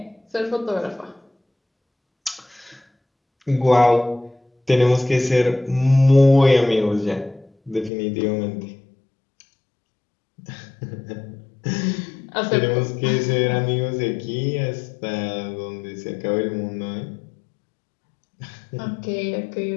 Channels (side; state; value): right; drops out; at 7.9 s